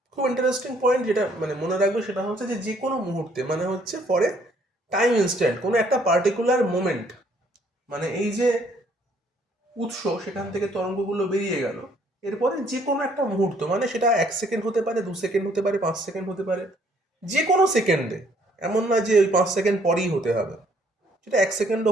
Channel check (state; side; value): normal; both; correlation 0.64